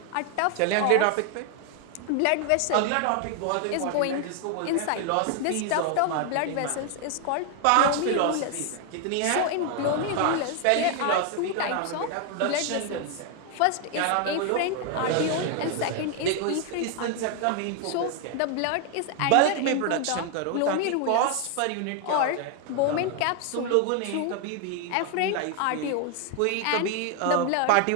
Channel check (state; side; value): different; both; correlation 0.00